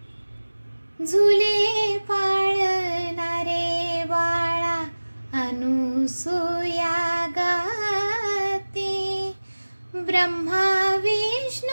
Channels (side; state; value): both; inverted; correlation -1.00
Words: झुले पाळणारे बाळा अनुसूया गाते, ब्रह्मा